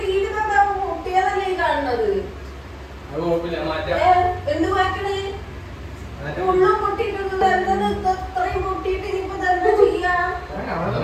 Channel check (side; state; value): both; identical; correlation 1.00